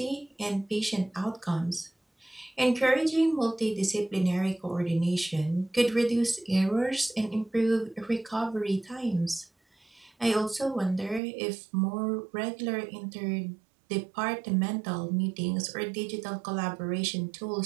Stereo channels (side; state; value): left; drops out; at 11.2 s